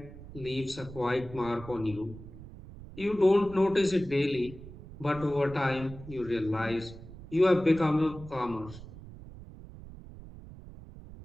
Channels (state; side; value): noise; right; rumble, 15 dB below the sound